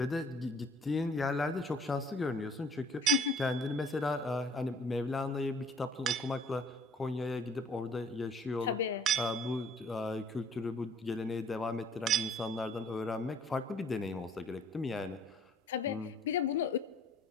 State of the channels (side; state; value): both; normal; correlation 0.55